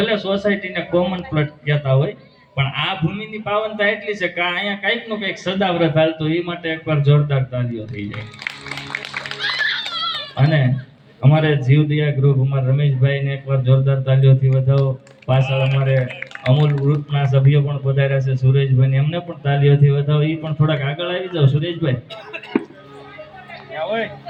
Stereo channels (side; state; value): both; identical; correlation 1.00